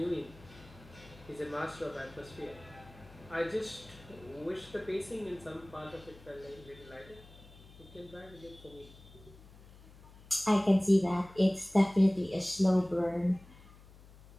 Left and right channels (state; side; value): noise; left; hum, 21 dB below the sound